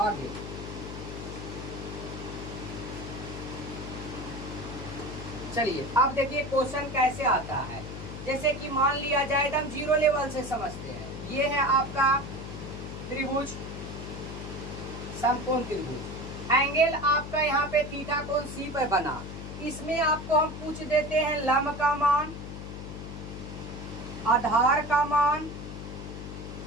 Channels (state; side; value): noise; left; hum, 9 dB below the sound